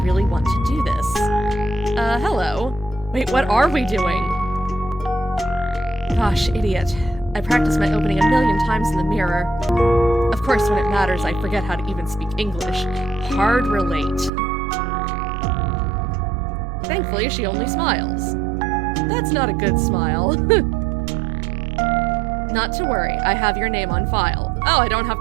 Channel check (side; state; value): left; drops out; at 14.3 s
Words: want to do this. Hello. Wait, what are we doing? Gosh, idiot. I practiced my opening a million times in the mirror. Of course, when it matters, I forget how to even speak English. Hard relate. Thankfully, she only smiles. That's not a good smile. Not to worry, I have your name on file. Oh, I don't have